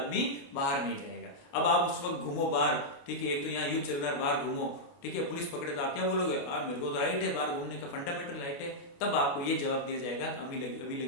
बाहर नहीं जाएगा। अब आप उस वक्त घूमो बाहर, ठीक है, एक तो यहाँ युद्ध चल रहा है, बाहर घूमो, ठीक है, पुलिस पकड़े तो आप क्या बोलोगे? मेरे को तो राइट है बाहर घूमने का, फंडामेंटल राइट है। तब आपको ये जवाब दिया जाएगा अभी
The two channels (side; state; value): right; late; 28 ms